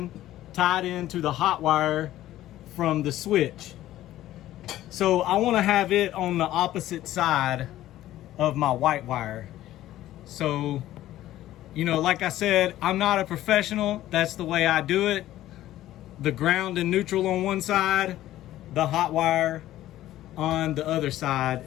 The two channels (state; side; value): quieter; right; 14.1 dB